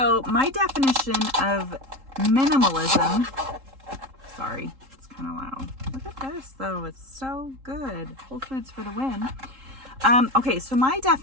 my definition of minimalism, sorry, it's kind of loud. Look at this though, it's so good. Whole Foods for the win. Okay, so my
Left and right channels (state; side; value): late; left; 3.8 ms